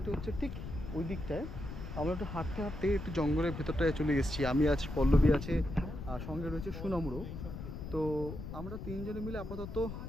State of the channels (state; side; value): noise; left; rumble, 8 dB below the sound